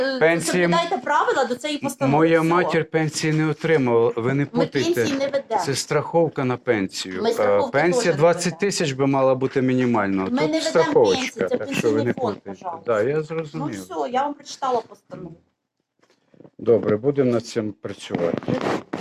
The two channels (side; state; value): both; identical; correlation 1.00